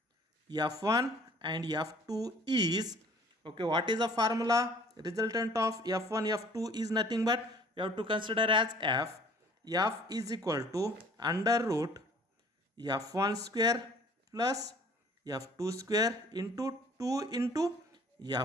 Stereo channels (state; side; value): normal; both; correlation 0.53